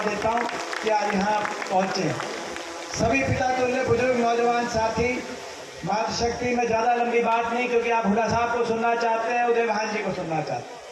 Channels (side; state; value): both; identical; correlation 1.00